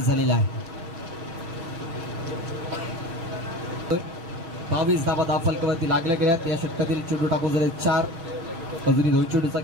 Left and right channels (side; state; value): left; late; 6.0 ms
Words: झालेला आहे. 22 धावा धावफलकावरती लागल्या गेल्यात. या षटकातील चेंडू टाकून झाले 4. अजूनही 2 चेंडूचा